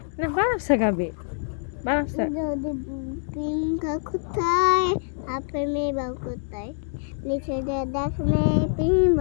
না, বানারসে গাবে, বানারসে। যদি প্রেম কোথায় আপনি বা কোথায় নিচে দেখলে প্রেম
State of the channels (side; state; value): right; silent; digital silence